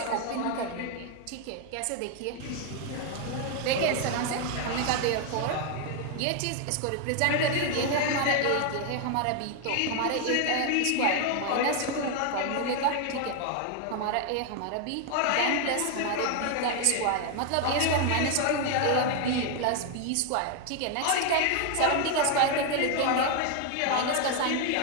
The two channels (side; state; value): both; different; correlation 0.01